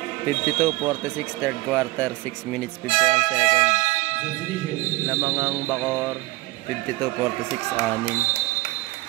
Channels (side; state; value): left; quieter; 19.8 dB